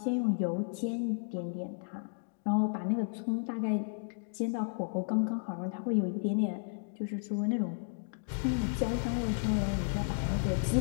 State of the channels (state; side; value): silent; right; digital silence